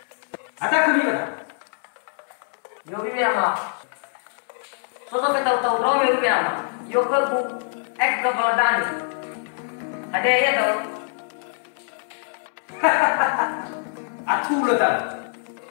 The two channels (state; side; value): silent; right; 63 dB below the other